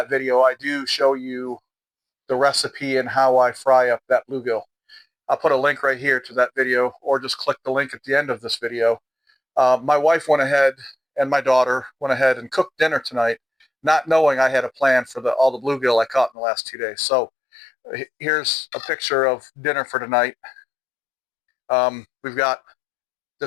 video I do show you the recipe and how I fry up that bluegill. I'll put a link right here to that video, or just click the link at the end of this video. My wife went ahead and my daughter went ahead and cooked dinner tonight, not knowing I had a plan for all the bluegill I caught in the last 2 days. So here's a picture of dinner for tonight. We've got,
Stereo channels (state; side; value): drops out; right; at 16.3 s